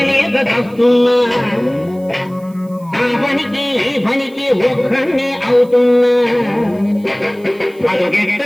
తప్పున్నా ఆ పనికి ఈ పనికి ఒక్కడే అవుతున్నా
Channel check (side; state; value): right; noise; hiss, 29 dB below the sound